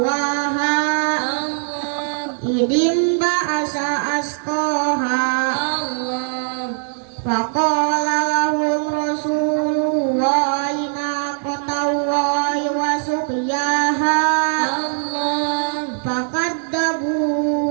إذ انبعث أشقاها فقال لهم رسول الله ناقة الله وسقياها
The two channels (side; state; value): left; silent; digital silence